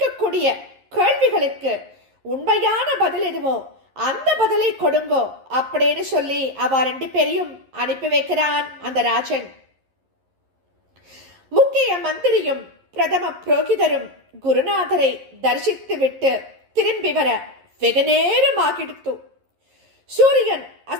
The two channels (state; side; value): late; left; 11 ms